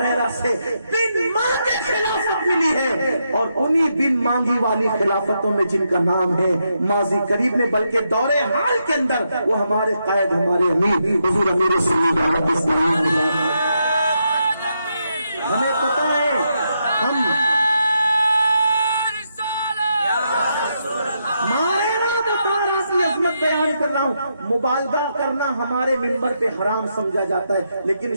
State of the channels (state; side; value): inverted; both; correlation -0.81